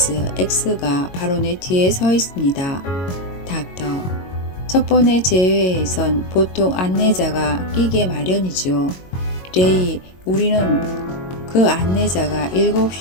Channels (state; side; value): late; right; 22 ms